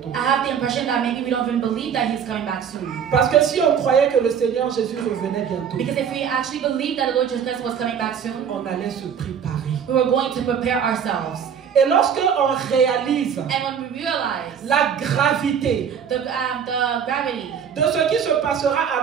I have the impression that maybe we don't even believe that He's coming back soon. Parce que si on croyait que le Seigneur Jésus revenait bientôt, Because if we actually believed that the Lord Jesus Christ was coming back soon, on allait se préparer. we were going to prepare ourselves. Et lorsque on réalise And when we realize la gravité the gravity de ce qui se passera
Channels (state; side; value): quieter; left; 7.7 dB